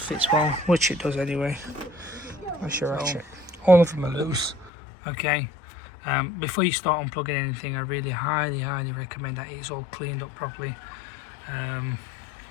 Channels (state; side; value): drops out; right; at 4.7 s